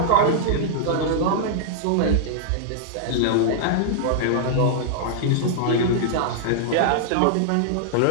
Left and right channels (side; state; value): both; different; correlation -0.01